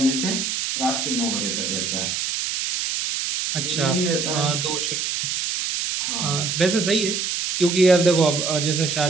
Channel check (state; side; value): noise; right; hiss, 2 dB below the sound